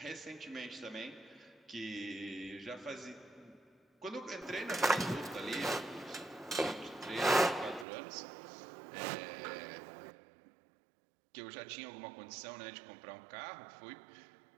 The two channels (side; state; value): left; drops out; at 7.9 s